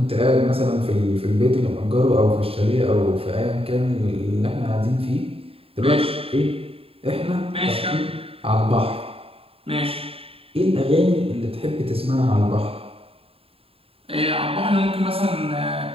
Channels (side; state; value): left; late; 0.27 ms